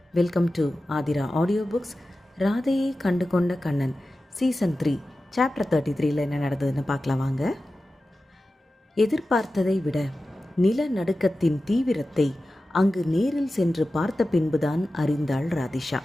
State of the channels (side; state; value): both; normal; correlation 0.94